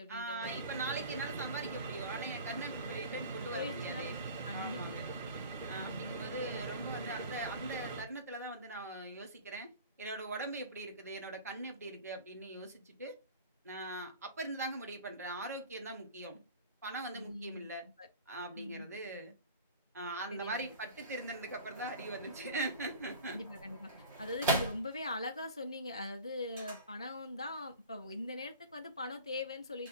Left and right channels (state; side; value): inverted; both; correlation -0.40